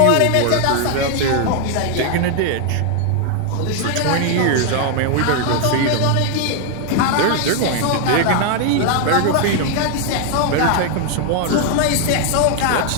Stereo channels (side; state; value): both; different; correlation 0.00